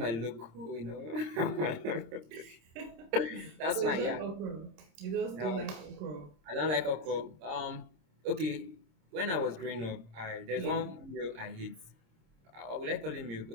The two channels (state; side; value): late; left; 26 ms